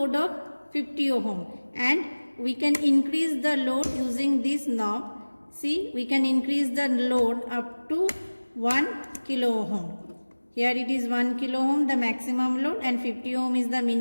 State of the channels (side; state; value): both; inverted; correlation -1.00